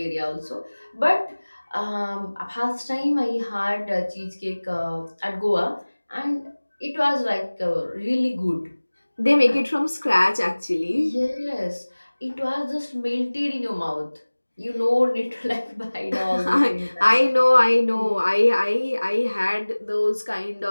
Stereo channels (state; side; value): inverted; both; correlation -1.00